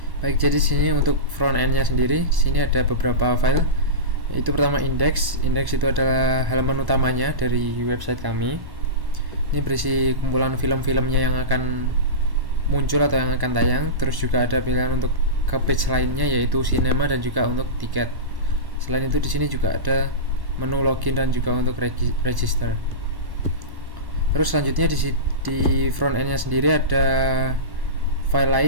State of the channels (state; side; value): late; left; 1.1 ms